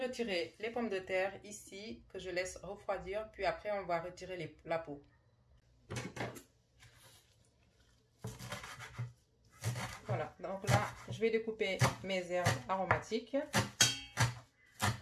les pommes de terre ici que je laisse refroidir, puis après on va retirer la peau. Voilà, donc là, je vais découper mes herbes aromatiques.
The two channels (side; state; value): both; identical; correlation 1.00